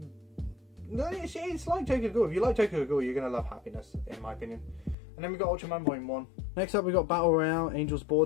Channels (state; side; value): drops out; right; at 5.0 s